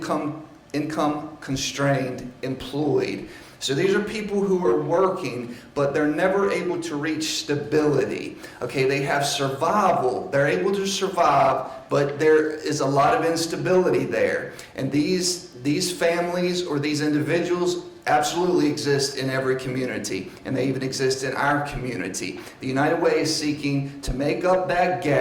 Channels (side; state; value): both; identical; correlation 1.00